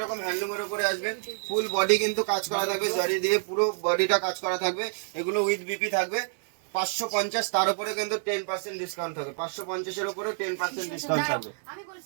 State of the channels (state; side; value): silent; left; digital silence